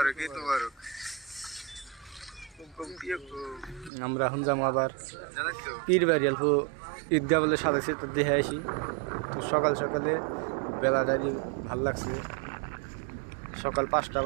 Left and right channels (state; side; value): drops out; left; at 3.9 s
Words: ईद मुबारक। আমরা এখন যাবো আবার পীর বাড়ি। অল্প ঈদগাহ বলে সাজাইছে, তো দেখে আসি। তো সকাল সকালে বেলাটারি ভাল লাগছে। সকাল 5টা